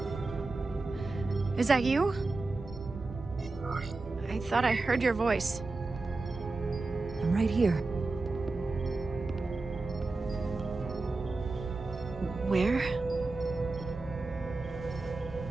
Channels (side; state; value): left; quieter; 3.5 dB